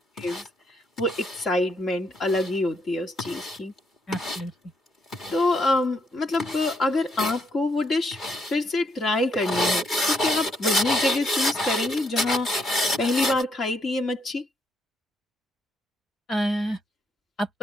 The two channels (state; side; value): normal; both; correlation 0.74